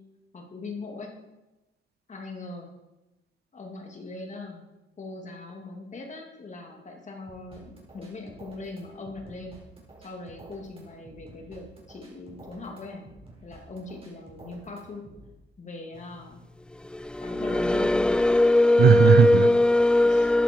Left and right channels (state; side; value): normal; both; correlation 0.86